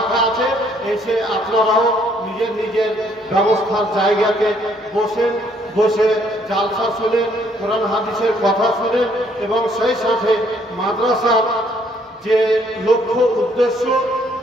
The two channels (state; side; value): normal; both; correlation 0.66